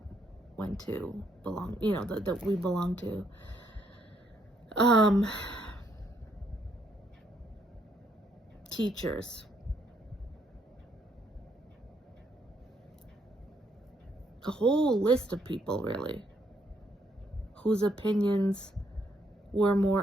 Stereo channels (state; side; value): normal; both; correlation 0.72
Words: went to, that we belong to. Teachers. A whole list of people, really, whose opinions were